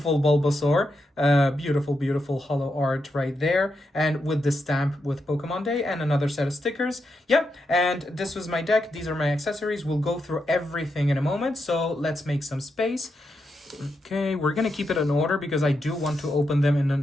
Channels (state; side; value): normal; both; correlation 0.84